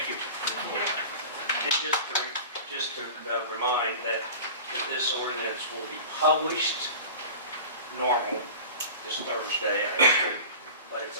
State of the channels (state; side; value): inverted; both; correlation -0.36